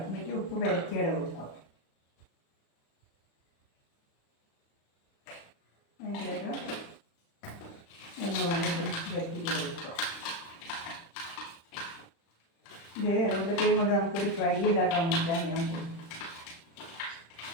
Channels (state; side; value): late; right; 36 ms